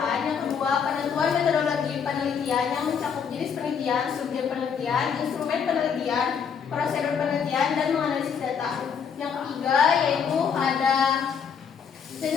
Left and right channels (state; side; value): quieter; right; 6.9 dB